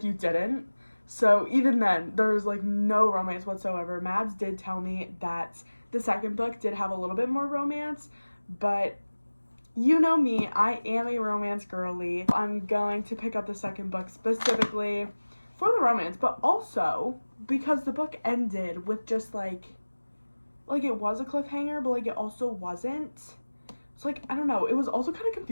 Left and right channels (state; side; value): inverted; both; correlation -1.00